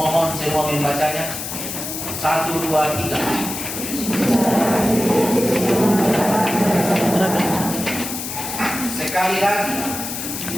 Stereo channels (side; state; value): left; noise; hiss, 6 dB below the sound